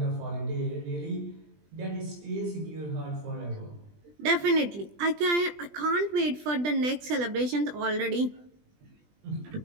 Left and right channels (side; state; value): left; late; 20 ms